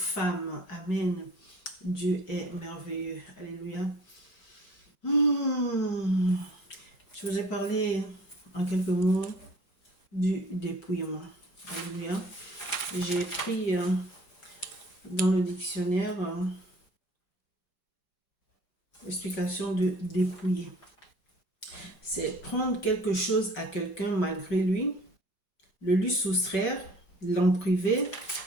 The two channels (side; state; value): right; late; 4.3 ms